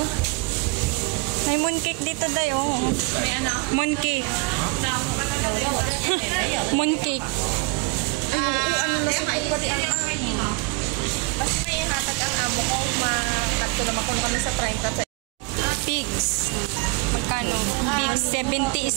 May mooncake dito dayo. May ano? Mooncake. Mooncake. Ano na sa pagkari ang basta may hatag ang amo ko. Makanto naman kung kami sa 30. Pigs. Magkano? Pigs, 70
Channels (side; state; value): left; quieter; 26.1 dB